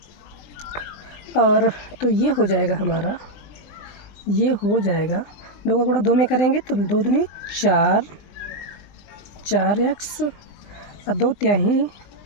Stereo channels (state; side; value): late; right; 20 ms